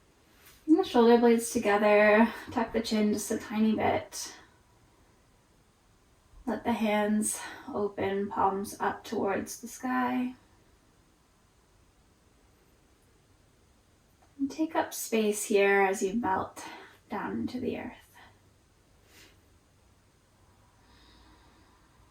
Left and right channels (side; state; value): both; identical; correlation 1.00